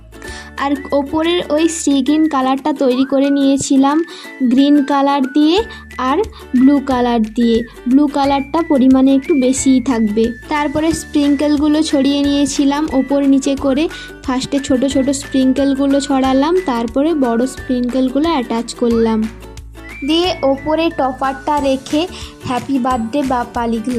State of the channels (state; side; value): identical; both; correlation 1.00